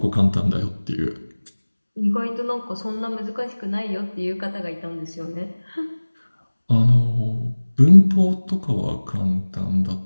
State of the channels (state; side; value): inverted; both; correlation -1.00